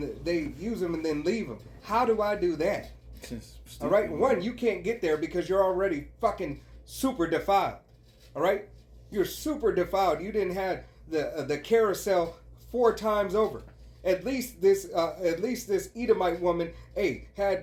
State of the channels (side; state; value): both; identical; correlation 1.00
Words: they use them and then leave them. How do I do that? All right. One, you can't get there because you're already fucking super defiled. All right. You're super defiled. You didn't have the carousel 4 times over. At least this Edomite woman,